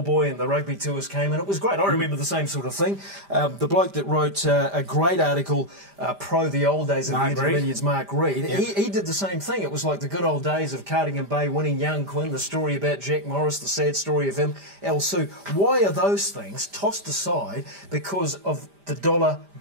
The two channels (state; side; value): late; left; 5.0 ms